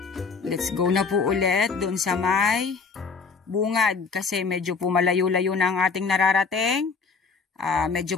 Let's go na po ulit doon sa may bungad kasi medyo po malayo-layo na ang ating nararating. Medyo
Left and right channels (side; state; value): right; quieter; 5.0 dB